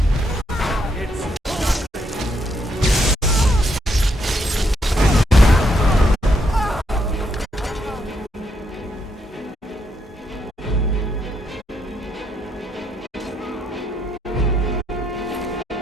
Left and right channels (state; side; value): normal; both; correlation 0.76